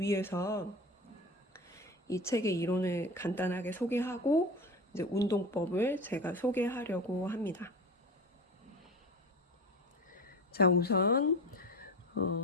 이 책의 이론을 간단하게 소개하고 이제 운동법을 제가 소개하려고 합니다. 자, 우선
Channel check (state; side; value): normal; both; correlation 0.29